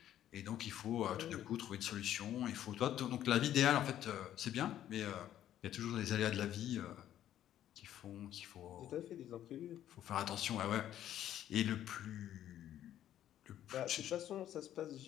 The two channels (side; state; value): right; quieter; 11.6 dB